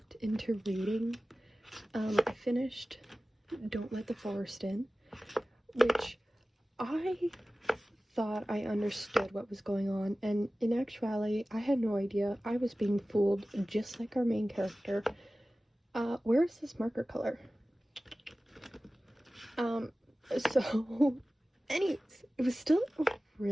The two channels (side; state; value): both; normal; correlation 0.96